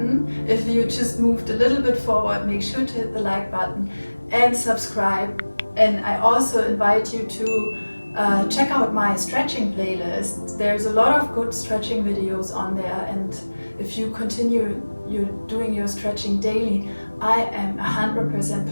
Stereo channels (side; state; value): both; inverted; correlation -1.00